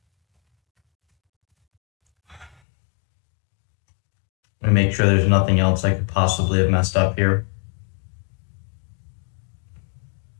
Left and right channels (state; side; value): drops out; right; at 2.6 s